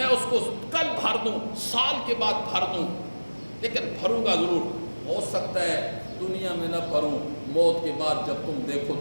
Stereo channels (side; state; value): both; inverted; correlation -1.00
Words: اس کو کل بھر دوں، سال کے بعد بھر دوں، لیکن بھروں گا ضرور۔ ہو سکتا ہے دنیا میں نہ بھروں، موت کے بعد جب تم دیکھو